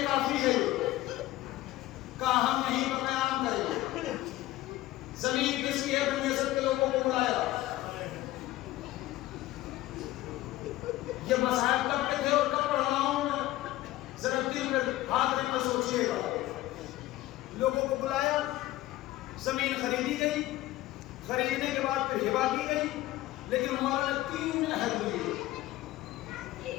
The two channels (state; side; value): quieter; right; 16.2 dB